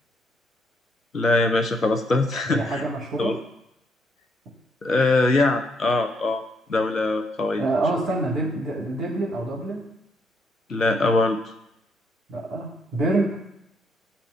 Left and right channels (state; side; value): normal; both; correlation 0.73